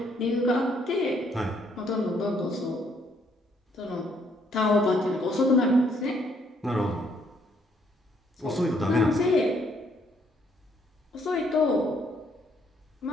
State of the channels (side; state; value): both; normal; correlation 0.69